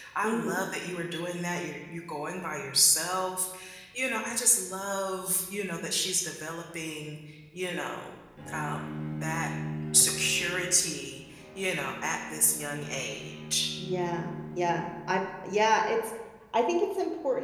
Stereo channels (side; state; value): both; identical; correlation 1.00